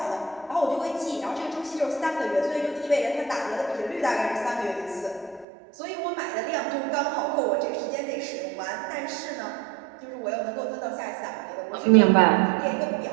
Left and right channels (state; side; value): drops out; left; at 5.5 s